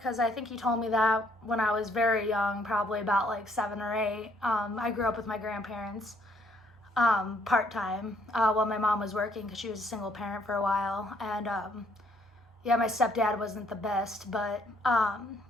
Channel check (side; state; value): both; normal; correlation 0.67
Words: I think he told me that when I was very young, probably about like 7 or 8, I grew up with my grandparents part time while my mom was working because she was a single parent for a while. And yeah, my stepdad wasn't the best, but I